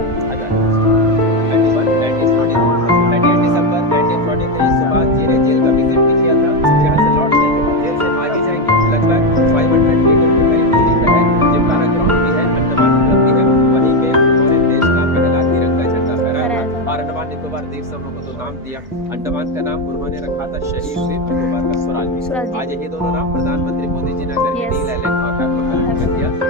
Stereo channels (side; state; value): both; normal; correlation 0.09